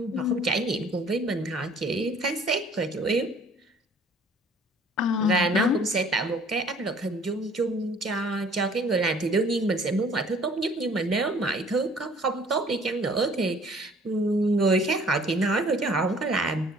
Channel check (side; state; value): both; normal; correlation 0.54